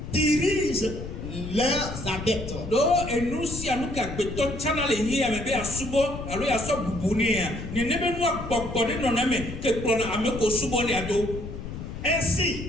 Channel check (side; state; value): left; noise; rumble, 8 dB below the sound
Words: dirige leurs adeptes.